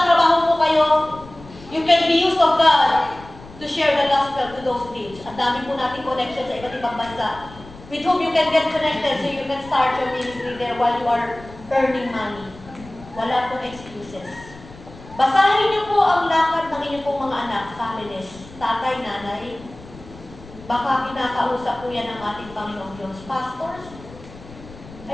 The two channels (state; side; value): noise; left; rumble, 19 dB below the sound